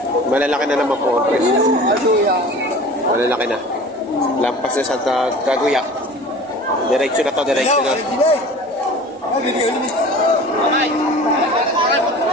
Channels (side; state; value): both; normal; correlation 0.40